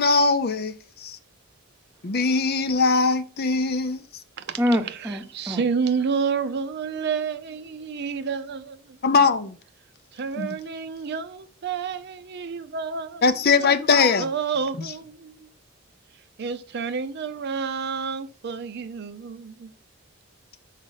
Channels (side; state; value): both; normal; correlation -0.11